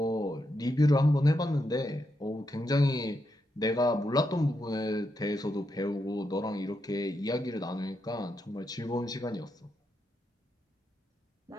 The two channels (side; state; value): both; normal; correlation 0.83